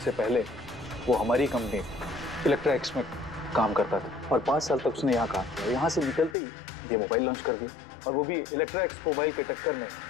पहले वो हमारी कंपनी इलेक्ट्रा एक्स में काम करता था और 5 साल तक उसने यहाँ काम किया। यहाँ से निकलते ही ये मोबाइल लॉन्च कर दिया, और वो भी इलेक्ट्रा एक्स मोबाइल के टक्कर में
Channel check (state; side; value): drops out; right; at 6.4 s